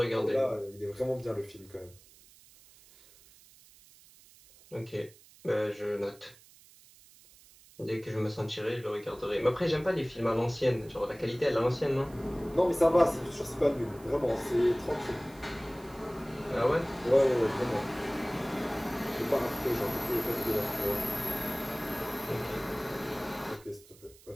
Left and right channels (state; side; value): noise; right; hiss, 24 dB below the sound